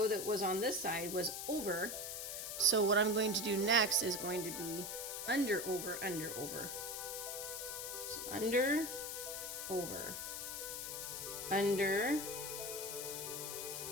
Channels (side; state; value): left; noise; hiss, 5 dB below the sound